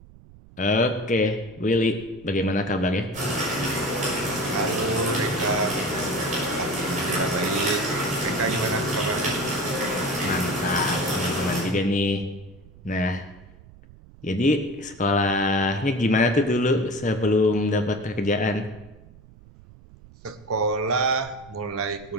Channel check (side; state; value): right; noise; rumble, 22 dB below the sound